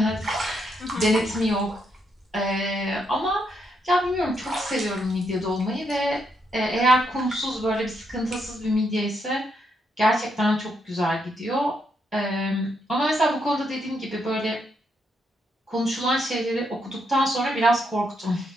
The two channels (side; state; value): both; normal; correlation 0.78